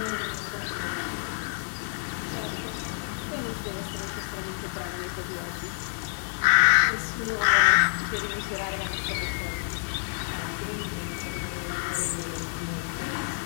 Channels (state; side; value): silent; right; 59 dB below the other